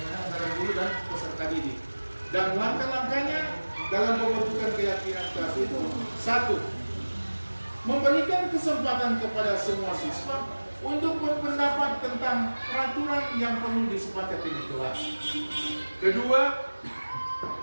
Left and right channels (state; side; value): inverted; both; correlation -1.00